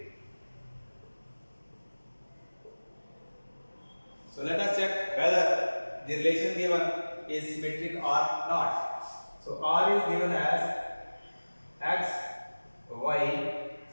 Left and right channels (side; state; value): both; inverted; correlation -1.00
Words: So let us check whether the relation given is symmetric or not. So R is given as X, Y,